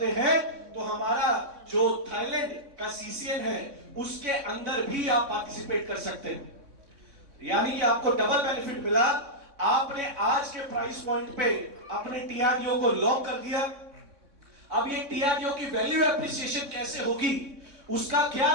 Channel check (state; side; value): late; left; 3.6 ms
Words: हैं तो हमारा जो थाईलैंड का सीसीएन है उसके अंदर भी आप पार्टिसिपेट कर सकते हैं। यानी कि आपको डबल बेनिफिट मिला। आपने आज के प्राइस पॉइंट पे अपने टीआरडीओ को लॉक कर दिया। अब ये टीआरडीओ की वैल्यू एप्रिसिएशन कैसे होगी, उसका क्या